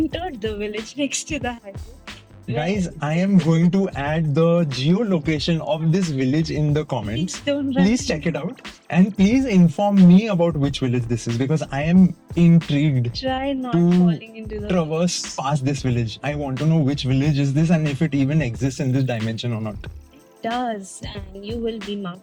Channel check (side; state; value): both; identical; correlation 1.00